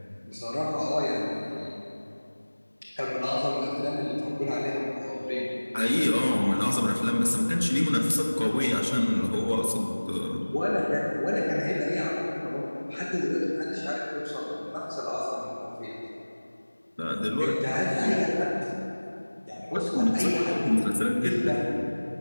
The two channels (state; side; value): inverted; both; correlation -1.00